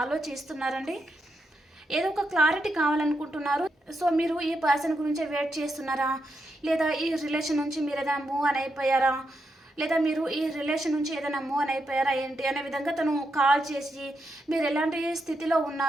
ఆలోచిస్తున్నారండి. ఏదో ఒక క్లారిటీ కావాలనుకుంటున్నారు. సో మీరు ఈ పర్సన్ గురించి వెయిట్ చేస్తున్నారా, లేదా ఈ రిలేషన్ నుంచి మీరు ఏదైనా మూవ్ అని అయిపోయారా, లేదా మీరు ఈ రిలేషన్ నుంచి ఏదైనా మూవ్ అని అయిపోయారా ఏంటి అనే విధంగా తను కాల్ చేసి మీరు ఎలాంటి స్థితిలో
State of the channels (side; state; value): both; normal; correlation 0.83